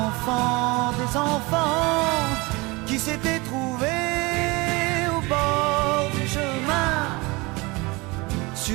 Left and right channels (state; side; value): quieter; left; 24.8 dB